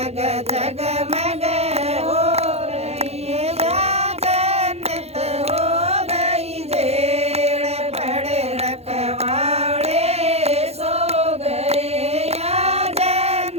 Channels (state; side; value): late; left; 0.30 ms